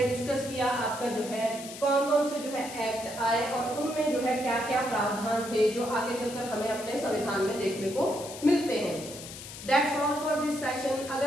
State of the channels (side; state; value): left; noise; hiss, 12 dB below the sound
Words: डिस्कस किया आपका जो है कौन कौन से जो है एक्ट आए और उनमें जो है क्या क्या प्रावधान थे जो आगे चलकर हमें अपने संविधान में देखने को मिलते हैं। That's all for this session. अगर